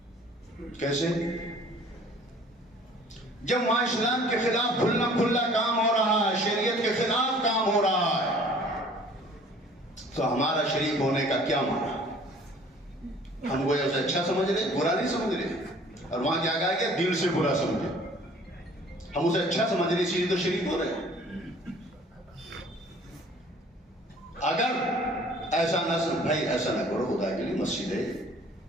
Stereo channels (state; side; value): normal; both; correlation 0.52